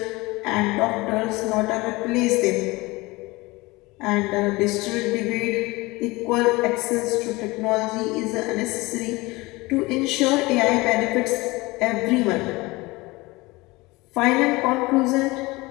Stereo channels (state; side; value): quieter; right; 22.3 dB